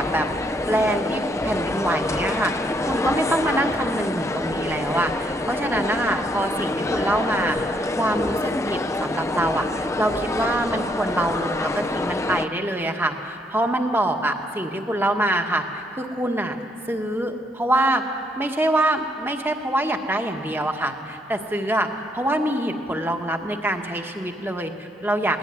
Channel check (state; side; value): normal; both; correlation 0.72